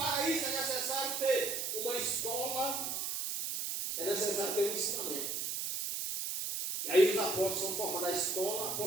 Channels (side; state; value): right; noise; hiss, 2 dB below the sound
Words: isso é necessário ter uma escola, é necessário ter um ensinamento. E aí os apóstolos são formados a escola